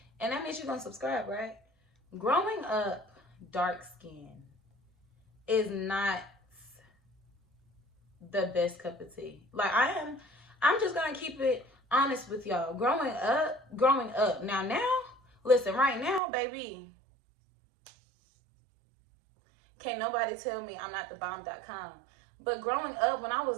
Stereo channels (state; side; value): drops out; left; at 16.2 s